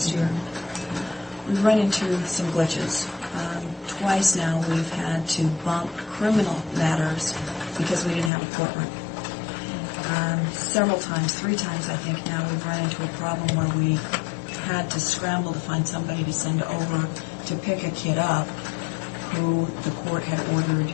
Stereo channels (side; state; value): right; drops out; at 8.3 s